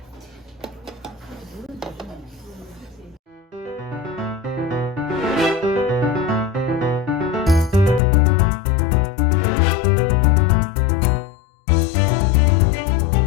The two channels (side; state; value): right; drops out; at 8.0 s